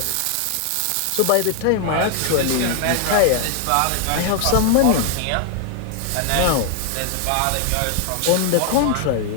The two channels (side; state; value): both; different; correlation 0.00